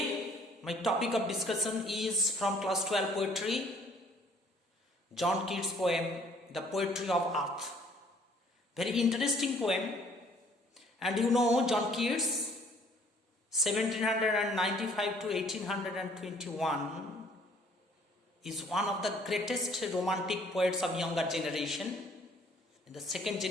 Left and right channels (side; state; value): both; normal; correlation 0.58